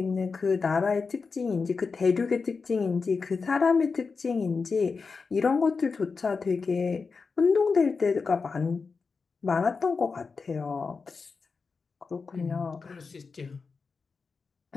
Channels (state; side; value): quieter; right; 4.8 dB